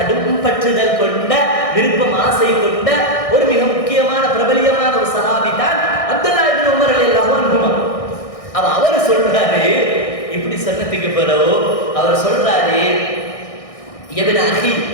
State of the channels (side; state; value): right; late; 1.6 ms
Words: பற்றுதல் கொண்ட, விருப்பம் ஆசை கொண்ட ஒரு மிக முக்கியமான பிரபலியமான ஒரு சஹாபி தான் அப்துல்லா இப்னு உமர் ரலியல்லாஹு அன்ஹு. அவர் சொல்றாரு, இப்படி சொன்னதுக்கு பிறகு அவர் சொல்றாரு, இப்னு அஹி,